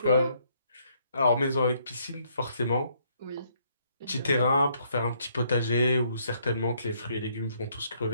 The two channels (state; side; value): inverted; both; correlation -0.69